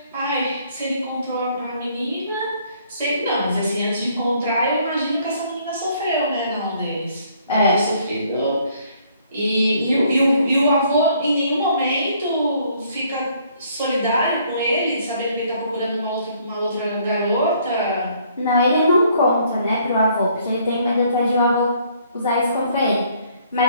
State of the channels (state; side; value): inverted; both; correlation -0.64